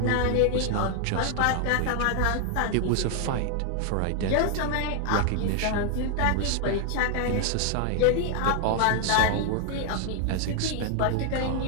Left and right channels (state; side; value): different; both; correlation 0.00